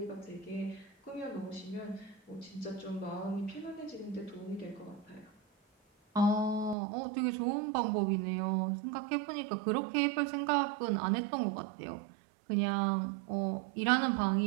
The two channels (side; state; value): left; drops out; at 6.8 s